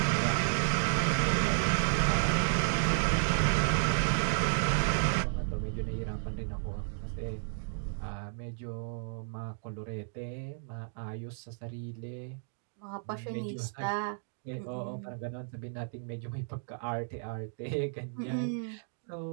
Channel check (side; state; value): left; silent; digital silence